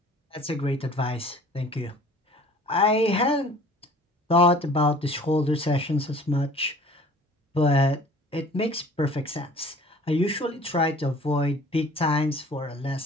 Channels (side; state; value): both; normal; correlation 0.49